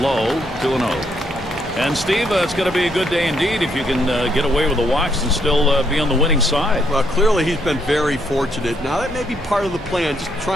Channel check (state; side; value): normal; both; correlation 0.73